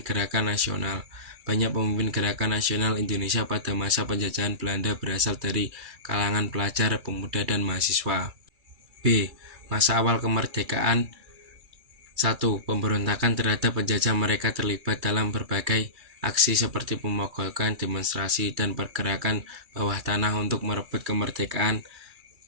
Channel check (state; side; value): late; left; 2.3 ms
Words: gerakan nasional. Banyak pemimpin gerakan nasional Indonesia pada masa penjajahan Belanda berasal dari kalangan pelajar, pemuda, dan mahasiswa. B. Masa awal kemerdekaan. 1. Pemberontakan terhadap penjajah, mereka terlibat dalam berbagai aksi seperti pemogokan, demonstrasi, dan pergerakan bawah tanah untuk merebut kemerdekaan